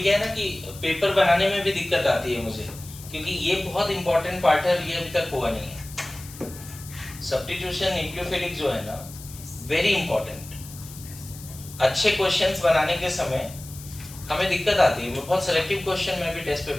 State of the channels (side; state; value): left; noise; hiss, 16 dB below the sound